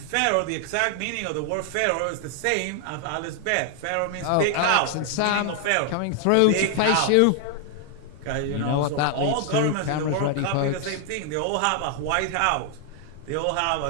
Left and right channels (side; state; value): both; different; correlation 0.00